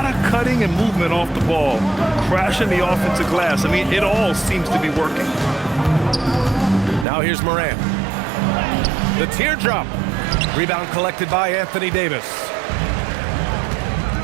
of cutting and movement off the ball, crashing the offensive glass. I mean, it all seems to be working. Now here's Morant. The teardrop. Rebound collected by Anthony Davis.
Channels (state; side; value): drops out; left; at 7.1 s